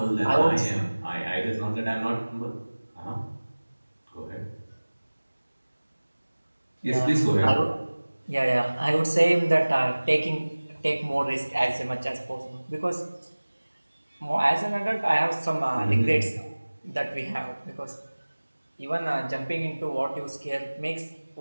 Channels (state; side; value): inverted; both; correlation -1.00